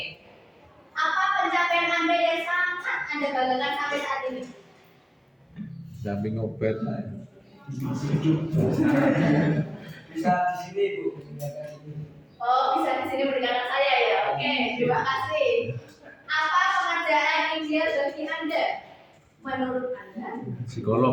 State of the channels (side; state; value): both; identical; correlation 1.00